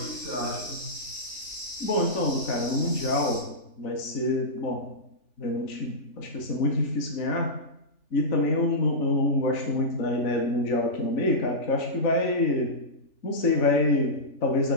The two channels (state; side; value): late; right; 3.4 ms